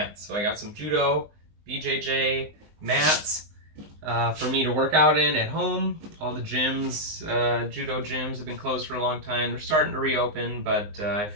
So I got some judo, BJJ mats for me to work out in at home. All the gyms, judo gyms have been closed for a long time. They're starting to reopen, but I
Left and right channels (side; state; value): left; late; 19 ms